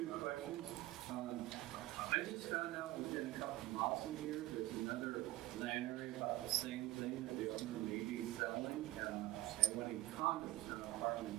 questions. I just found out within a couple of miles from here, there's another land area about the same thing that the owner may be selling, and wanting condos and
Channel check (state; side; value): quieter; left; 16.3 dB